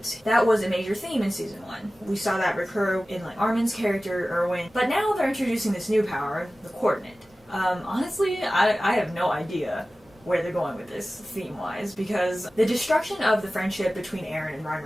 That was a major theme in season 1. We saw that recur in like Arman's character, Erwin, but now they're introducing this new power, the coordinate. Honestly, I have no idea where they're going with this theme-wise, because the destruction of the friendship between Eren and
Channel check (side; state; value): both; normal; correlation 0.96